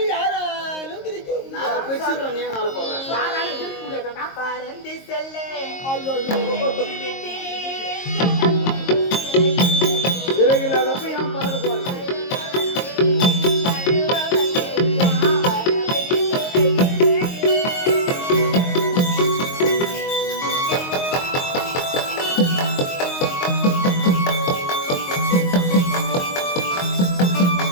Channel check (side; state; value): right; late; 22 ms